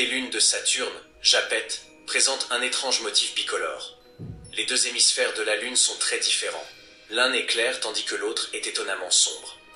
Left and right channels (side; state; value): both; identical; correlation 1.00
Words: lunes de Saturne, Japet, présente un étrange motif bicolore. Les 2 hémisphères de la Lune sont très différents. L'un est clair tandis que l'autre est étonnamment sombre.